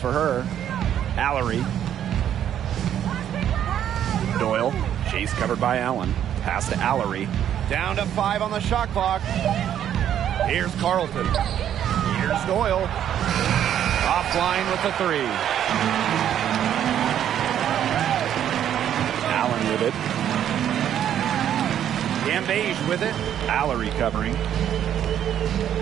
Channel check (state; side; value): quieter; left; 10.2 dB